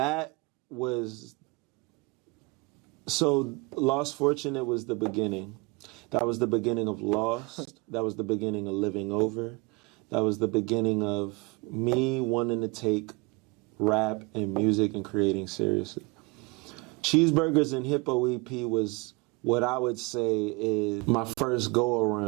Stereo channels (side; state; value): left; quieter; 27.2 dB